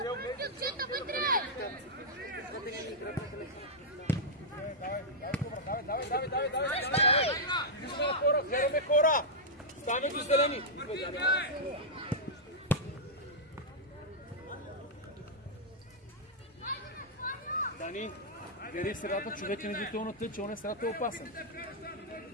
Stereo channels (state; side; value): normal; both; correlation -0.08